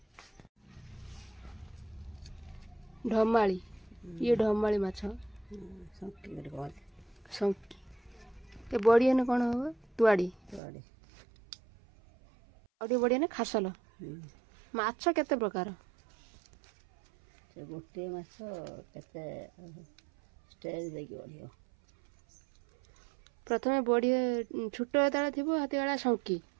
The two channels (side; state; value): left; drops out; at 10.6 s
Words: ढमाली ये ढमाली माछ संकी ये बढ़िया ने कौन हम तुआड़ी और बढ़िया ने खासल माछ केते प्रकार से गोटे माछ केते स्टेज देकी बढ़िया प्रथमे बढ़िया छोट जेतला थिबो हाथी वाला संकी